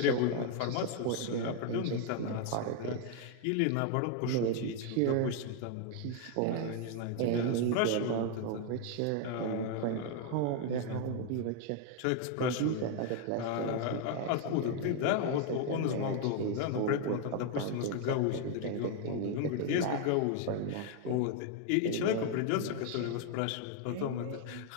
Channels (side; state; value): both; different; correlation 0.01